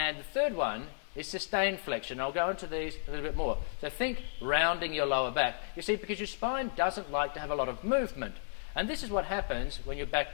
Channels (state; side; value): silent; right; digital silence